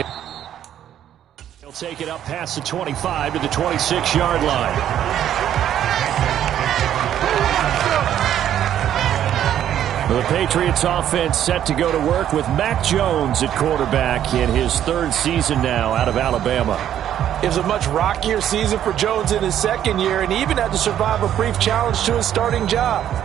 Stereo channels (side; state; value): left; quieter; 10.7 dB